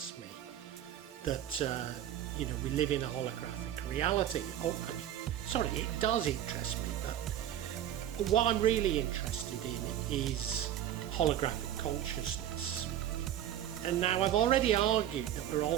me, that we live in a holographic reality. It does interest me, but what I'm really interested in is holographic consciousness. And now I've already argued that we're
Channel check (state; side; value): quieter; left; 11.3 dB